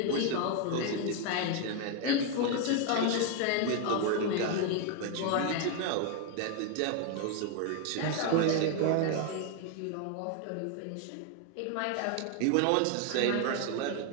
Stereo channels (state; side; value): different; both; correlation 0.01